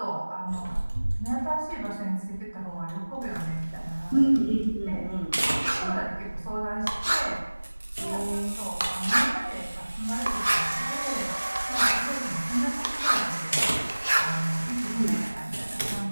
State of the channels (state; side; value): inverted; both; correlation -1.00